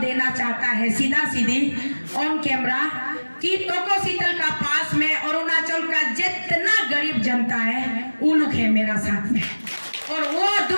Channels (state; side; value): inverted; both; correlation -1.00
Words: चाहता है सीधा सीधी ऑन कैमरा कि तोकोसीतल का पास में अरुणाचल का जितना गरीब जनता है वो लोग है मेरा साथ में, और वो